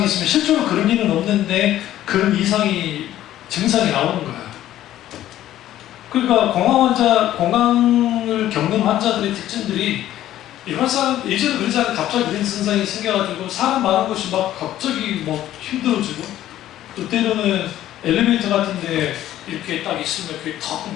있으면 실제로 그런 일은 없는데 그런 이상이 증상이 나오는 거야. 그러니까 공황을 겪는 환자들의 특징들이 일반 사람 예전에 그러지 않아요. 갑자기 그런 증상이 생겨가지고 사람 많은 곳이 막 갑자기 막 힘들어지고 또 때로는 엘리베이터 같은데 이렇게 딱 있으면 이렇게 턱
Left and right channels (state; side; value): quieter; right; 13.0 dB